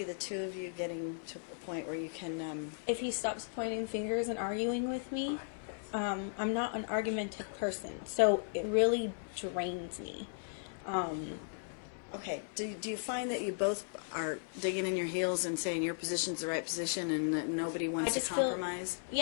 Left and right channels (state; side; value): silent; right; 54 dB below the other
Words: the two of you getting to a point where you can? If he stops pointing fingers and arguing with me, I'm not an argumentative person, so it really drains me. Okay. Do you find that you both are digging in your heels and saying your position's the right position and that nobody wants to just feel- compromise?